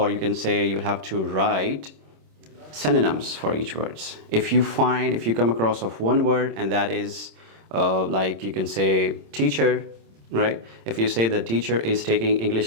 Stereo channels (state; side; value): late; left; 26 ms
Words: you can say you have to write synonyms for each words. If you come across of one word, and that is like you can say teacher, right? If you say the teacher is taking